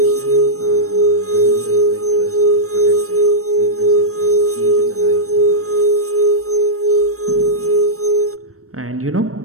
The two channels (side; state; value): left; late; 0.64 ms